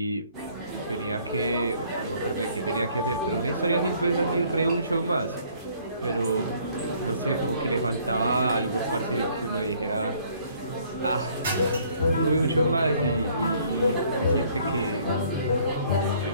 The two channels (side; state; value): both; inverted; correlation -0.61